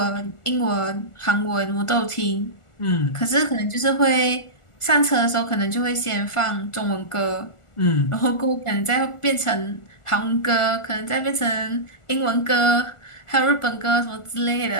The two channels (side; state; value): right; late; 1.4 ms